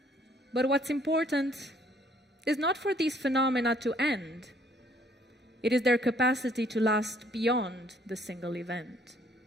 But what's important is not for these phenomena to end. It is their capacity to last beyond the single event.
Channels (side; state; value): both; normal; correlation 0.62